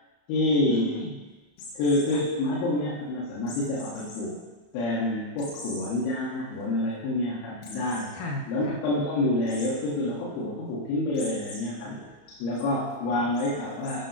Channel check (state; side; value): late; right; 34 ms